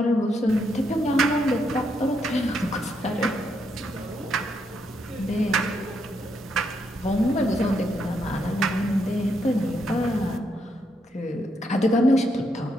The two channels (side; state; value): both; normal; correlation 0.78